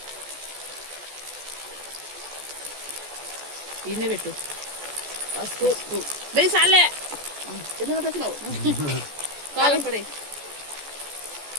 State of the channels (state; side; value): late; left; 14 ms